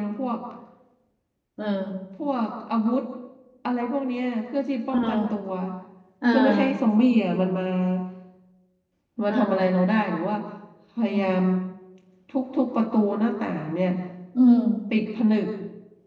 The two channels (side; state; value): both; identical; correlation 1.00